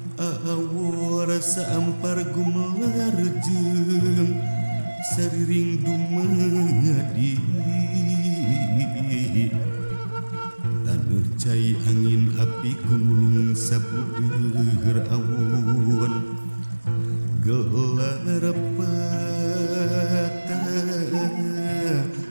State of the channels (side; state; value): both; inverted; correlation -1.00